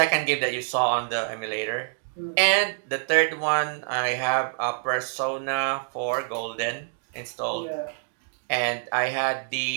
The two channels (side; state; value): left; silent; digital silence